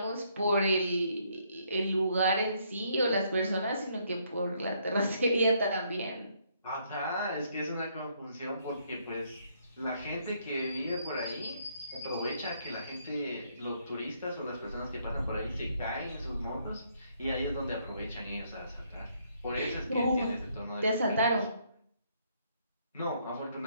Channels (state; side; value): inverted; both; correlation -0.70